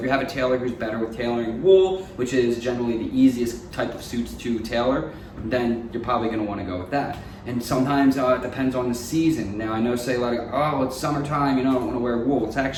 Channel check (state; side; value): identical; both; correlation 1.00